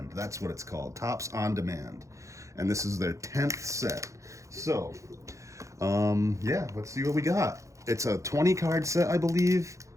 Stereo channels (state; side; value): late; left; 0.15 ms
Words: That's what it's called, Tops on Demand. And this is their 10th set. So, yeah, let's see what we got. It's a 20 card set, I believe,